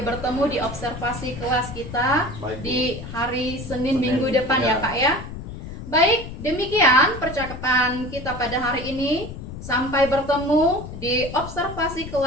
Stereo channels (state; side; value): noise; left; rumble, 10 dB below the sound